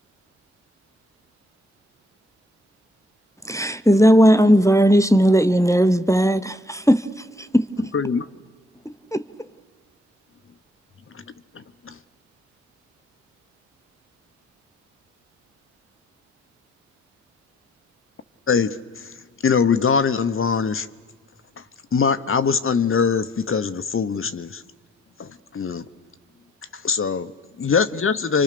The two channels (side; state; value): both; normal; correlation 0.65